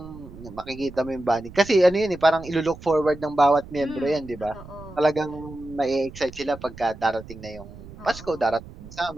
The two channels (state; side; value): noise; right; rumble, 16 dB below the sound